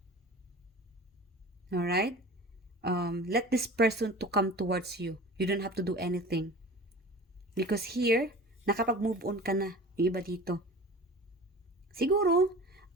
Alright? Let this person to come towards you. You don't have to do anything. Because here, nakapag-move on ka na. Yung iba dito. Siguro,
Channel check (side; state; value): both; normal; correlation 0.38